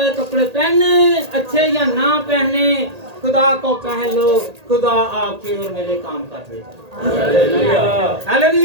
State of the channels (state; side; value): late; left; 1.8 ms